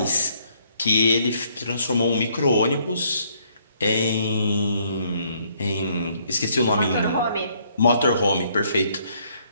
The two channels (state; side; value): inverted; both; correlation -0.67